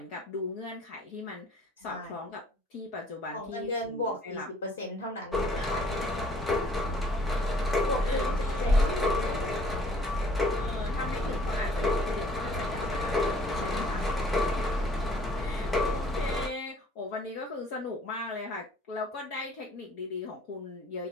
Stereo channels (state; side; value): normal; both; correlation 0.58